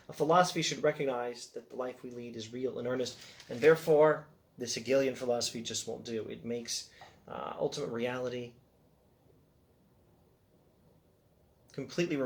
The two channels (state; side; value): identical; both; correlation 1.00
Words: A philosophy should recognize that the life we lead is real and earnest, and therefore this Hegelian philosophy just won't do. It makes ultimate reality completely